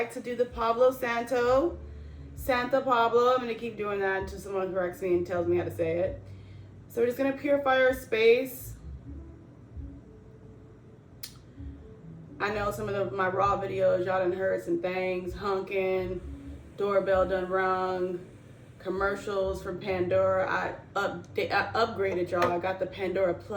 to do the Santa Pablo. I'm gonna keep doing that until someone corrects me and tells me how to say it. So we're just gonna purify our space. I know some of my raw videos, y'all done heard some things, honking, doorbell done rung, commercials from Pandora. I upgraded, y'all. I got the Pandora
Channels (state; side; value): identical; both; correlation 1.00